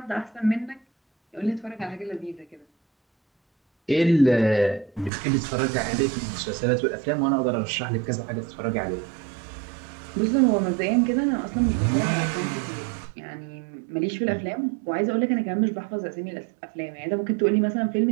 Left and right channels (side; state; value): left; drops out; at 5.1 s